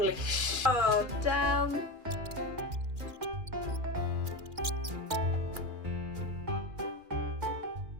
sh! Oh, damn.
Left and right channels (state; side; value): late; left; 2.4 ms